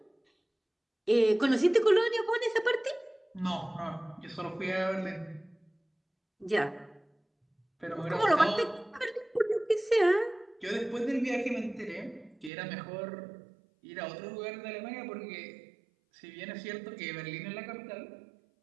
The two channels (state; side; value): drops out; left; at 12.5 s